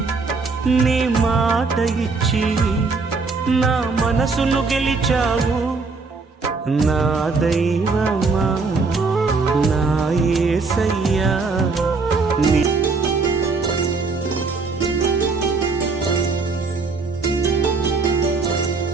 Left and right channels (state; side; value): quieter; left; 4.2 dB